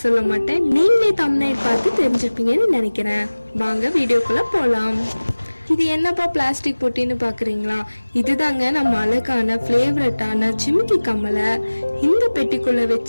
சொல்ல மாட்டேன், நீங்களே தம்ப்நெயில் பார்த்து தெரிஞ்சிருப்பீங்கன்னு நினைக்கிறேன். வாங்க வீடியோக்குள்ள போலாம். இது என்னப்பா பிளாஸ்டிக் பொட்டின்னு பாக்குறீங்களா? இதுதாங்க நம்ம அழகான ஃபேவரட்டான ஜிமிக்கி கம்மலை இந்த பெட்டிக்குள்ள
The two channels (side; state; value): both; inverted; correlation -1.00